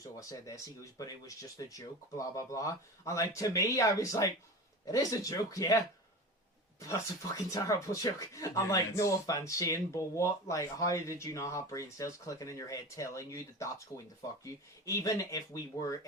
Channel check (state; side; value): normal; both; correlation 0.31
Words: "Oh, I said this." He goes, "But it was just a joke." Blah blah blah. And like to me, I was like, "It is a joke, yeah." That's a fucking terrible joke. I'm like, no offense, Shane, but what? Like, how did you not have brain cells clicking in your head telling you that that's going to fuck you? Even if